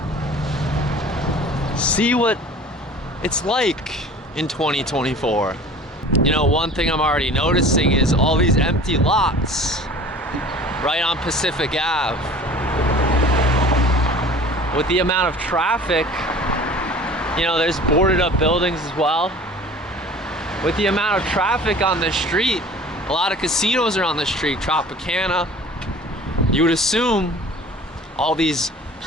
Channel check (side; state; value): both; normal; correlation 0.44